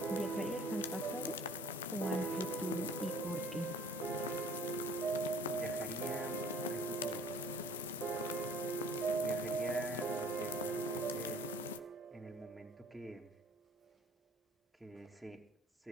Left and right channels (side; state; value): both; normal; correlation 0.51